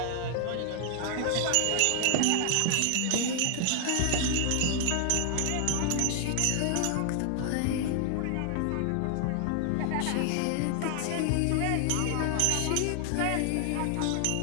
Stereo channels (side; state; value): both; different; correlation 0.00